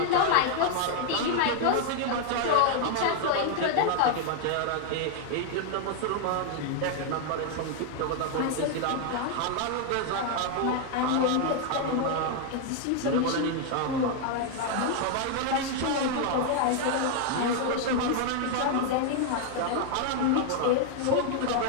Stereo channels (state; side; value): different; both; correlation 0.00